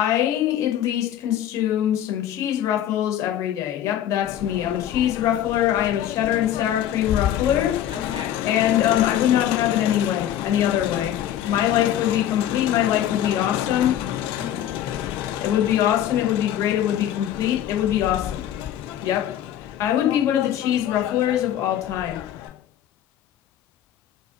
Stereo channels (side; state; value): right; quieter; 11.2 dB